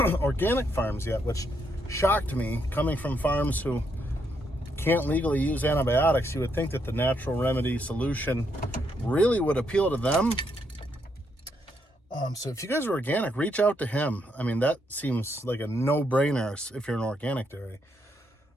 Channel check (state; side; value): normal; both; correlation 0.77